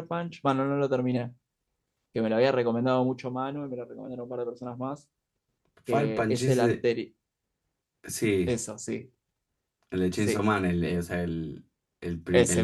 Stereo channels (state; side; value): identical; both; correlation 1.00